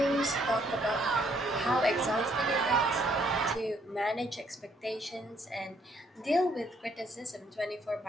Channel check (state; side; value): normal; both; correlation 0.68